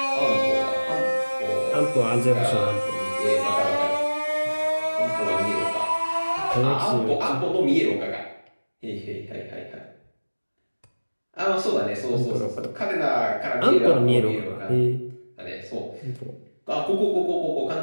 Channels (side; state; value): both; inverted; correlation -1.00